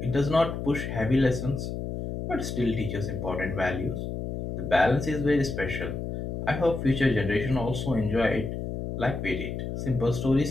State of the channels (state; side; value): noise; left; hum, 5 dB below the sound